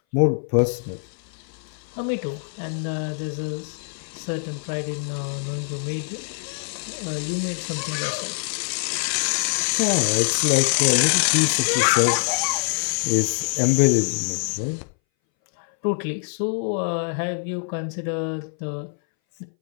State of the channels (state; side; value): silent; right; 60 dB below the other